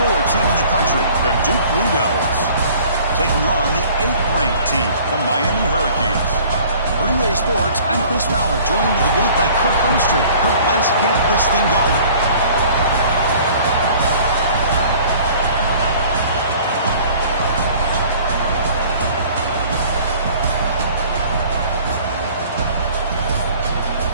team in the country, the Duke Blue Devils, taking on the 8th-ranked team, the Miami Hurricanes. For EA Sports, I'm Chris Fowler, joined in the booth by Kirk Herbstreit. Kirk, let's get this thing going.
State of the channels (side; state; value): both; inverted; correlation -0.50